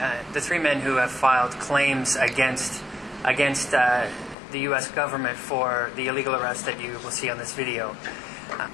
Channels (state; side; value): drops out; right; at 4.4 s